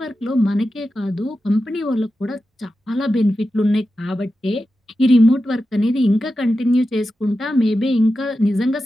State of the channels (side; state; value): both; normal; correlation 0.92